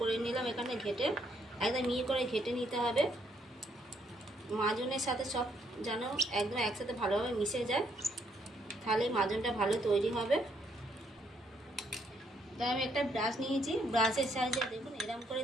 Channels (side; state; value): both; normal; correlation 0.71